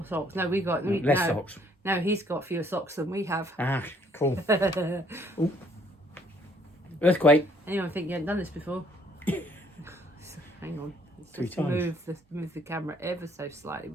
socks. No, less socks. No, he's got fewer socks than we have. Ah, cool. Earthquake. Anyone think you hadn't done this before? Hang on. Three Just times. move the camera ever so slightly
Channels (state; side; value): normal; both; correlation 0.64